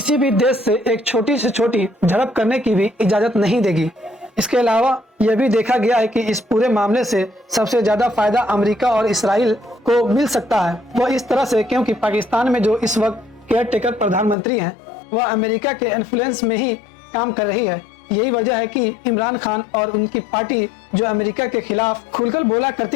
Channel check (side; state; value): right; drops out; at 14.4 s